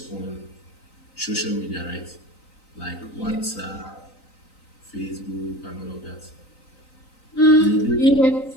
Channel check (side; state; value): right; late; 3.9 ms